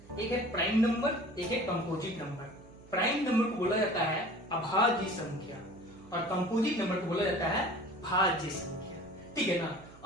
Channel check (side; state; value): right; noise; hum, 22 dB below the sound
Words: एक है प्राइम नंबर, एक है कंपोजिट नंबर। प्राइम नंबर को बोला जाता है अभाज्य संख्या और कंपोजिट नंबर को बोला जाता है भाज्य संख्या, ठीक है ना।